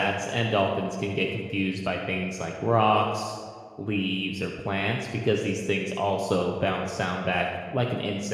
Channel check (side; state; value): both; identical; correlation 1.00